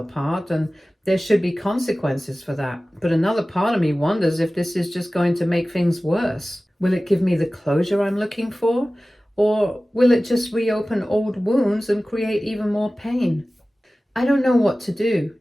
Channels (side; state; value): both; normal; correlation 0.97